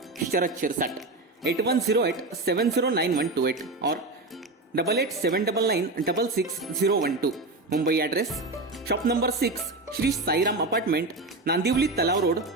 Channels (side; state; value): left; quieter; 3.0 dB